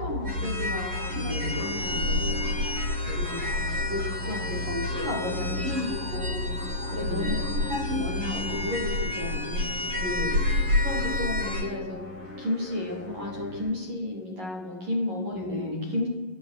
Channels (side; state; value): left; late; 11 ms